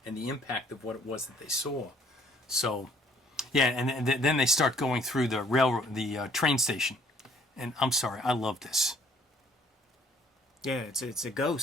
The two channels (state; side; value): normal; both; correlation 0.60